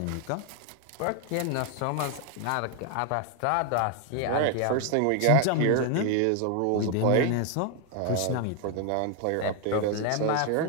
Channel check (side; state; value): both; different; correlation 0.01